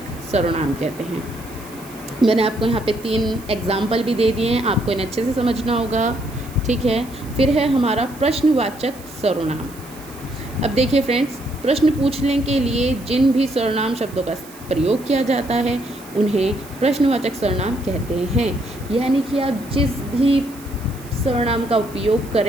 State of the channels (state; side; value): noise; right; hiss, 20 dB below the sound